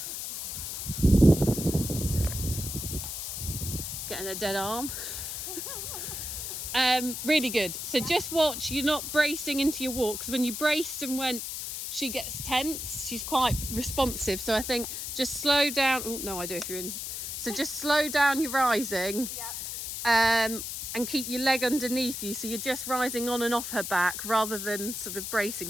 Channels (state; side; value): noise; left; hiss, 5 dB below the sound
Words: Getting a dead arm. Really good. So just watch, you're not bracing into your walk, because when you braced and went, she gets tense. She's quite responsive. So I think just slow down. Oh, no idea if you're in. So just slow down your rising. Yep. And keep your leg underneath you, so you're just rising on and off her back rather than sort of bracing,